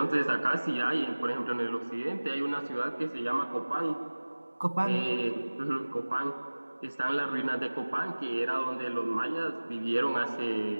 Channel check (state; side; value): inverted; both; correlation -1.00